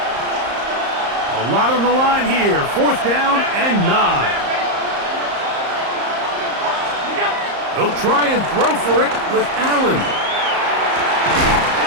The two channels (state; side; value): late; left; 34 ms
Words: A lot on the line here. 4th down and 9. They'll try and throw for it with Allen.